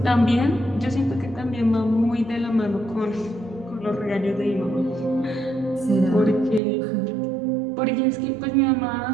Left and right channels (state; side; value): drops out; left; at 6.6 s